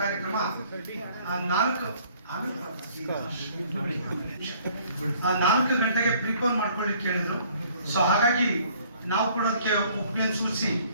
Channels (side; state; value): both; inverted; correlation -0.58